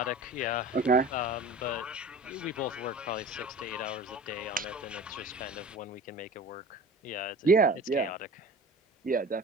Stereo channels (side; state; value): both; normal; correlation 0.39